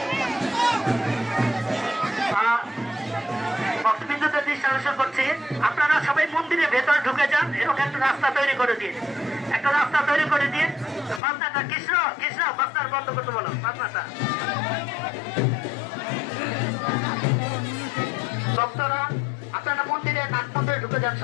ভক্তবৃন্দদের দৃষ্টি আকর্ষণ করছি, আপনারা সবাই মন্দিরের ভেতরে ঢুকে যান। এরকম একটা রাস্তা তৈরি করে দিন। বাজনাটা কৃষ্ণ বাজনার বন্ধ করতে বলো। বাজনাটা ভক্তরা আপনারা মন্দিরে নাট মন্দিরে ঢুকে যান।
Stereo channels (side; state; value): right; drops out; at 11.2 s